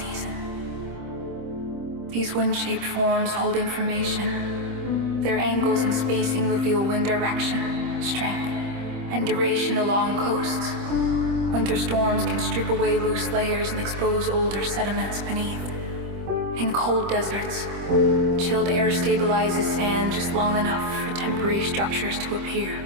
These wind-shaped forms hold information. Their angles and spacing reveal wind direction, strength, and duration along coasts. Winter storms can strip away loose layers and expose older sediments beneath. In cold deserts, chilled air stabilizes sand just long enough for temporary structures to appear,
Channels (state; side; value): late; left; 25 ms